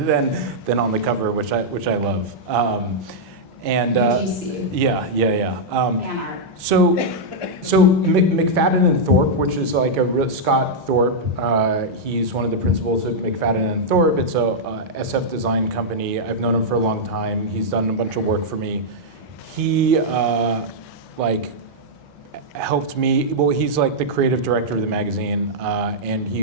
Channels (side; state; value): both; normal; correlation -0.06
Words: the cover, which I love. GC. Yeah. Fan art. So McFadden and Thorpe, which is like Scott Thorpe, he's one of the principals at McFadden and Thorpe. It's a SF design company. I've known him for a long time. He's done a bunch of work for me. he like helped me. Well, he's like the creative director of the magazine, and